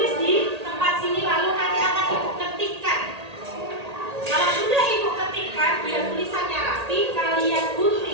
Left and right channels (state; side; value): late; left; 1.8 ms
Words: di tempat sini